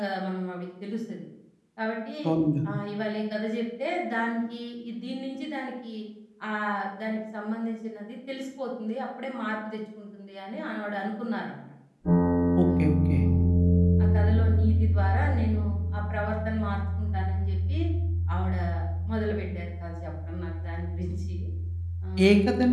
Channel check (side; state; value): both; identical; correlation 1.00